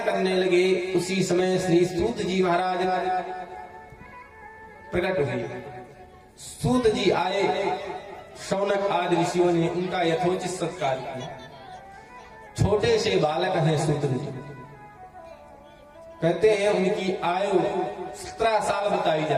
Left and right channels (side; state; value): both; identical; correlation 1.00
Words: करने लगे। उसी समय श्री सूत जी महाराज प्रकट हुए। सूत जी आए, शौनक आदि ऋषियों ने उनका यथोचित सत्कार किया। छोटे से बालक हैं सूत जी, कहते हैं उनकी आयु 17 साल बताई